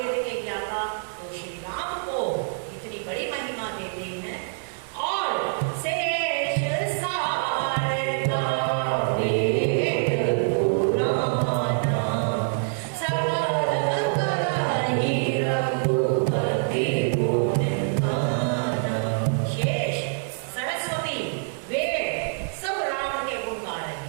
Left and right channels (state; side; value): silent; left; 58 dB below the other